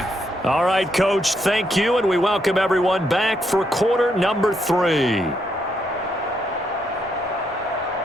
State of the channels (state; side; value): normal; both; correlation 0.77